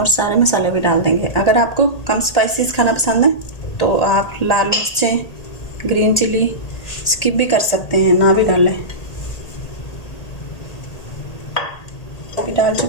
सारे मसाले भी डाल देंगे। अगर आपको कम स्पाइसेस खाना पसंद है तो आप लाल मिर्चें, ग्रीन चिली स्किप भी कर सकते हैं, ना भी डालें। अभी डाल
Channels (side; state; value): right; late; 1.8 ms